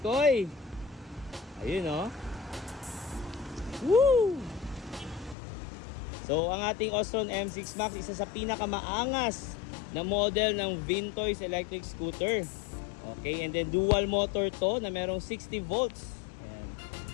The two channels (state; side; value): drops out; right; at 5.4 s